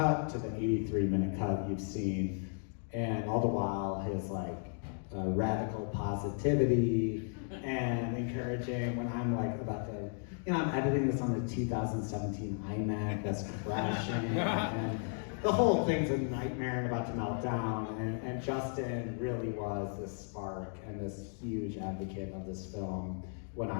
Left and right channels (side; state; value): right; silent; 54 dB below the other